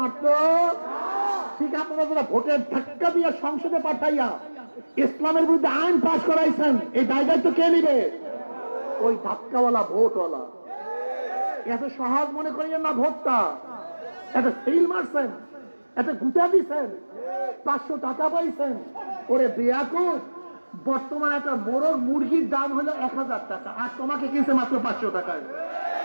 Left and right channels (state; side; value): inverted; both; correlation -1.00